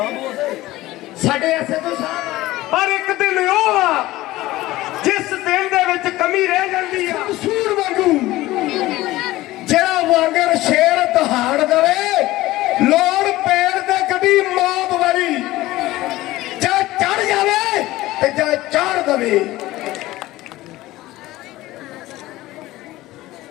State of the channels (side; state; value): right; quieter; 17.4 dB